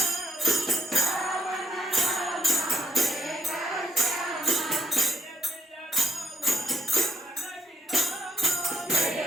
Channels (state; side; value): normal; both; correlation 0.80